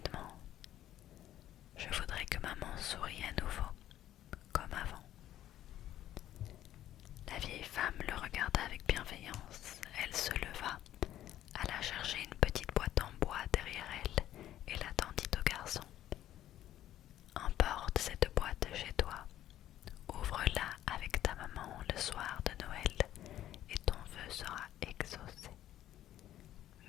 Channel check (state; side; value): quieter; right; 12.6 dB